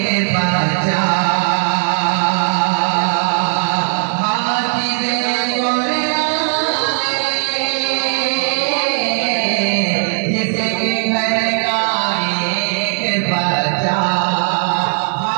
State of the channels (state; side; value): silent; left; 68 dB below the other